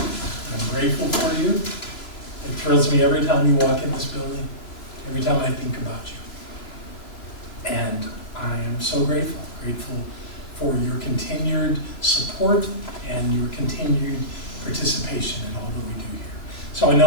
grateful for you. It thrills me every time you walk in this building, every time I think about you. And I am so grateful for your continued support and your continued participation in all that we do here. So I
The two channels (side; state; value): right; late; 3.0 ms